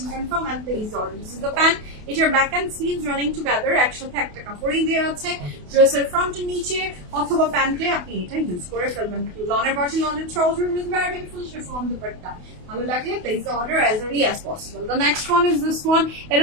confirm and place order. This is the pant. এটার back and sleeves running together একসাথে একটা কাপড়ই দেওয়া আছে। ড্রেসের ফ্রন্টের নিচে অথবা প্যান্টে আপনি এটা ইউজ করে ফেলবেন। লনের বডি, লনের trouser with very beautiful chiffon dupatta. ভালো লাগলে place the order as early as possible. The next one is this one.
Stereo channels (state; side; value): late; left; 28 ms